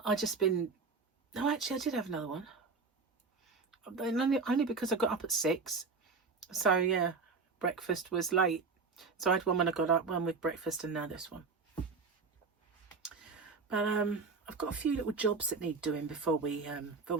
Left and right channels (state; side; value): quieter; left; 4.5 dB